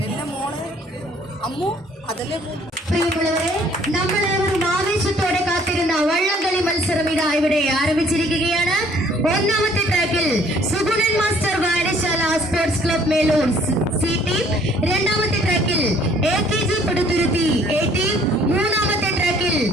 പ്രിയമുള്ളവരെ, നമ്മളേവരും ആവേശത്തോടെ കാത്തിരുന്ന വള്ളംകളി മത്സരം ഇതാ ഇവിടെ ആരംഭിച്ചിരിക്കുകയാണ്. ഒന്നാമത്തെ ട്രാക്കിൽ സുഗുണൻ മാസ്റ്റർ വായനശാല sports club Melur C team, രണ്ടാമത്തെ ട്രാക്കിൽ AKG പടുത്തുരുത്തി A ടീം, മൂന്നാമത്തെ ട്രാക്കിൽ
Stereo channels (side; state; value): both; normal; correlation 0.59